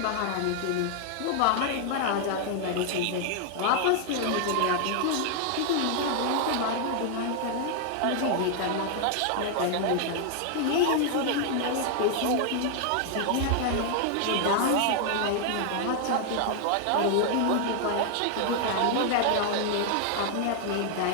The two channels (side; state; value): both; different; correlation 0.00